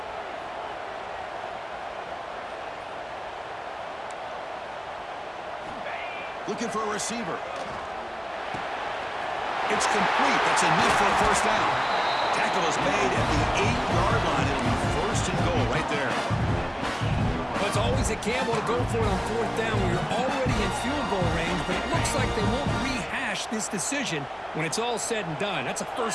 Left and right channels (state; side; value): identical; both; correlation 1.00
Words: Looking for a receiver. It's complete. That's enough for a first down. Tackle is made at the 8-yard line. It'll be 1st and goal right there. Well, it's always a gamble to go for it on 4th down when you're already in field goal range, but it looks like they won't rehash this decision when it's all said and done. That's a